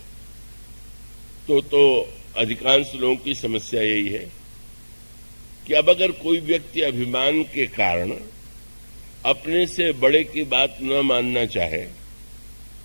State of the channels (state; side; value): inverted; both; correlation -1.00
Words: तो अधिकांश लोगों की समस्या यही है कि अब अगर कोई व्यक्ति अभिमान के कारण अपने से बड़े की बात न मानना चाहे